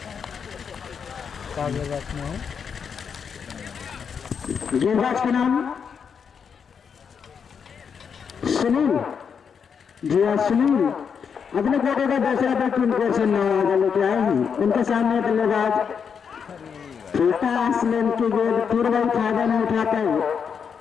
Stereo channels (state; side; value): quieter; right; 6.7 dB